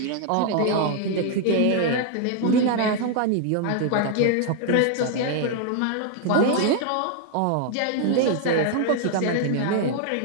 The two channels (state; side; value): different; both; correlation 0.00